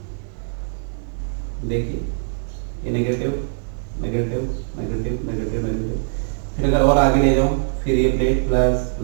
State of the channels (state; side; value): silent; left; digital silence